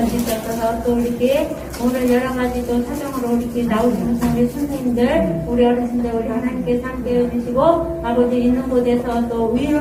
또 이렇게 오늘 여러 가지 또 사정으로 이렇게 나오시는 우리 선생님들 우리 어르신들 우리 하나님께서 함께 해주시고 아버지 있는 곳에서 또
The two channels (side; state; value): both; identical; correlation 1.00